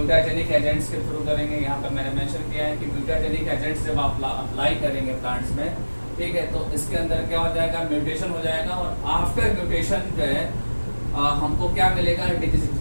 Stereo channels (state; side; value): inverted; both; correlation -1.00